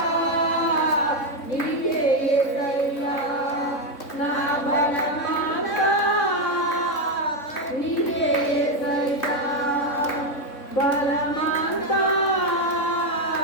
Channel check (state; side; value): late; right; 3.6 ms